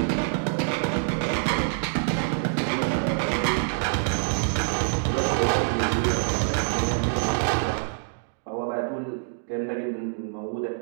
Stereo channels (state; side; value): silent; left; digital silence